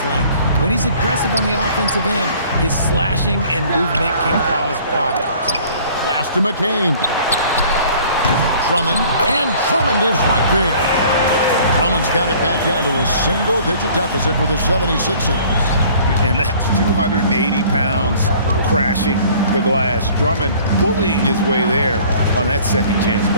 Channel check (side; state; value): both; inverted; correlation -0.52